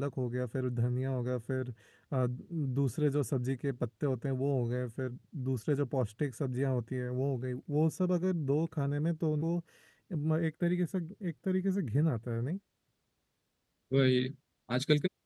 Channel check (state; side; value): identical; both; correlation 1.00